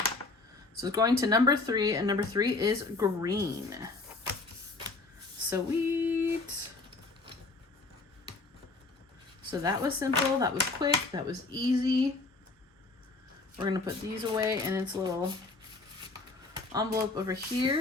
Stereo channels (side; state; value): right; quieter; 3.6 dB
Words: So it's going to number 3, and number 3 is green. Sweet. So that was simple, that was quick, that was easy. We're gonna put these away in its little envelope over